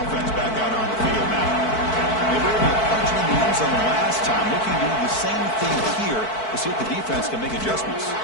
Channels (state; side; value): late; right; 4.5 ms